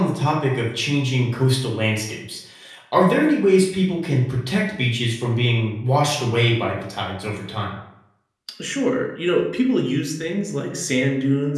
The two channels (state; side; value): identical; both; correlation 1.00